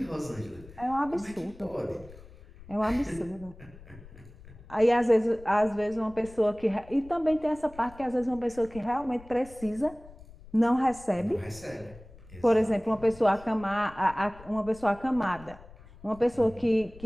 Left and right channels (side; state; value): left; noise; rumble, 20 dB below the sound